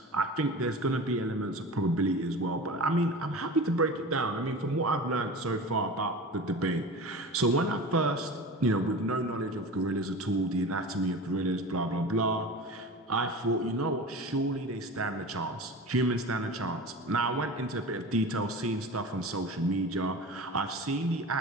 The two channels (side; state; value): both; normal; correlation 0.33